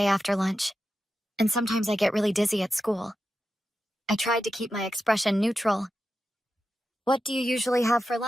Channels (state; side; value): normal; both; correlation 0.90